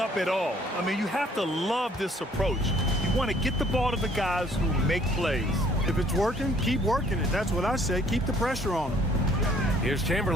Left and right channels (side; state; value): both; normal; correlation 0.61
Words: at all. I mean, you have to love this approach. You want to get the ball to the guys who make plays. If it's working, keep working it. That's what I say. Keep the pressure on them. Here's